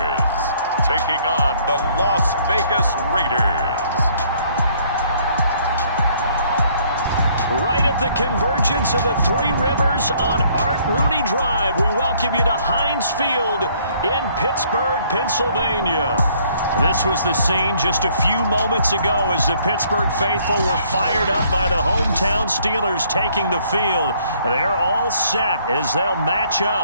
taking on the Las Vegas Raiders. Right at the convergence of the Three Rivers on Art Rooney Drive, we welcome you to Heinz Field in Pittsburgh, Pennsylvania. This was the scene just a few moments ago as the Pittsburgh faithful were fired up by the hometown Steelers taking the field. They're all set as they'll match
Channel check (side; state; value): both; inverted; correlation -0.63